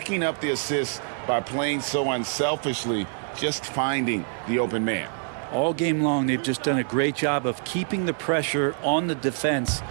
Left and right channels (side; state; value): left; silent; digital silence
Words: up the assists by playing so unselfishly, just finding the open man. All game long, they've just done a great job of keeping the pressure on the defense